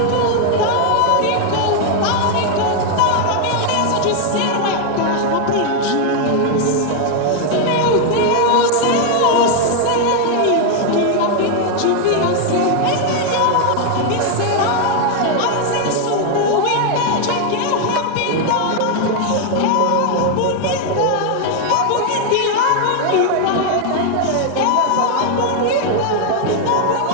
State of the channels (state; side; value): different; both; correlation 0.00